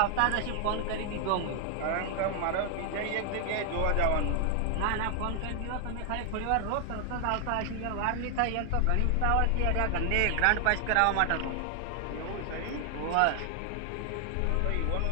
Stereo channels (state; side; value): different; both; correlation 0.00